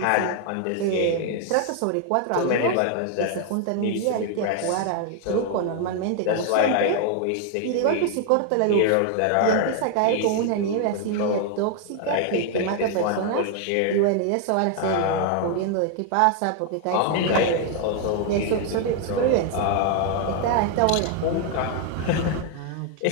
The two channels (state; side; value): different; both; correlation 0.00